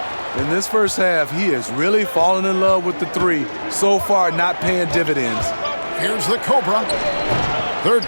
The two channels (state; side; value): inverted; both; correlation -1.00